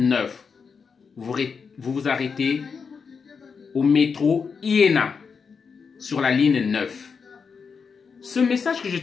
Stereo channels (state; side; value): quieter; right; 5.7 dB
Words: Vous vous arrêtez au métro Iéna sur la ligne 9. Ce message que je